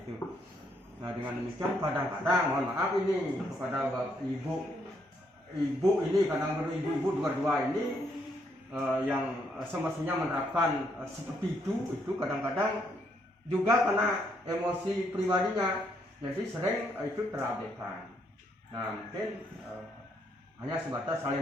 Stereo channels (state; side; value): normal; both; correlation 0.73